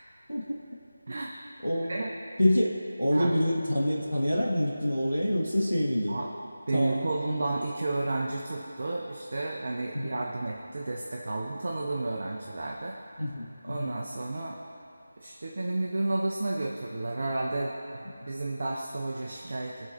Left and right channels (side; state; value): both; inverted; correlation -0.96